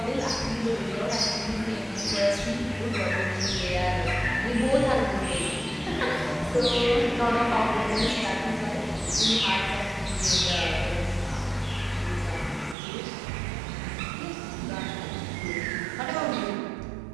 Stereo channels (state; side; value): drops out; left; at 12.8 s